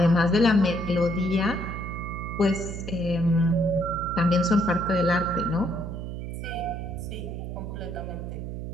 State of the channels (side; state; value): right; noise; hum, 6 dB below the sound